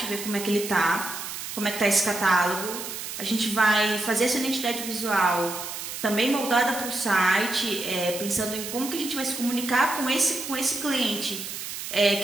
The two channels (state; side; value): noise; right; hiss, 7 dB below the sound